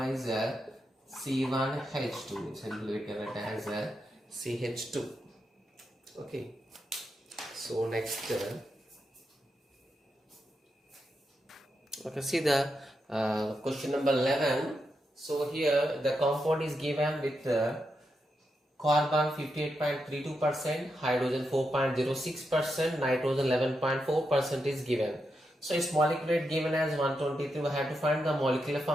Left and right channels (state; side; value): normal; both; correlation 0.85